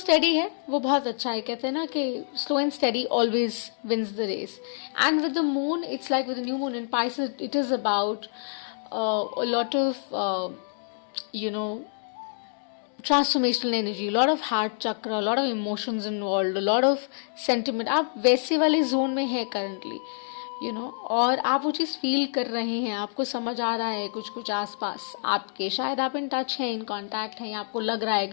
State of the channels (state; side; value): silent; right; digital silence